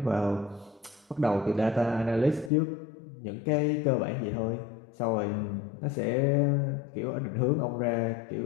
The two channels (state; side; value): drops out; right; at 2.5 s